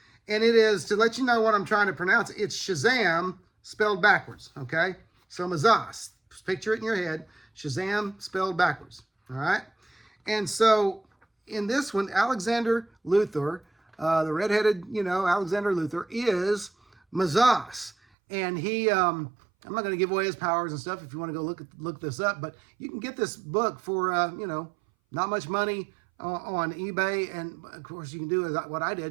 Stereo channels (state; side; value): drops out; left; at 17.9 s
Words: And it is, to let you know what I'm trying to pronounce, it's Shazam spelled backwards, okay? So Mazas, picture it in your head, Shazam spelled backwards, all right? And so in this one, Alexander Luthor, the redheaded, you know, Alexander Luthor is Mazas. And he, I'm not going to give away his powers and stuff if you want to go look this up, but you can get this book for, you know, not much money on eBay. And of course you can do what I